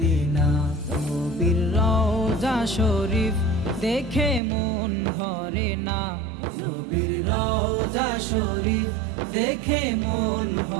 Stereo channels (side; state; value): left; drops out; at 4.4 s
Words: নবীর রওজা শরীফ দেখে মন ভরে না, নবীর রওজা শরীফ দেখে মন